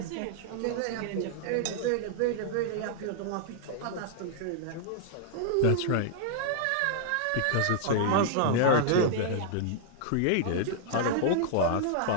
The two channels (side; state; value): both; different; correlation -0.01